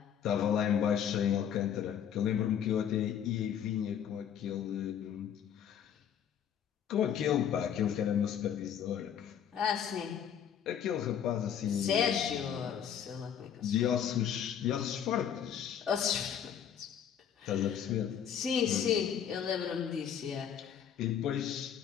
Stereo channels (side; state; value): right; quieter; 8.8 dB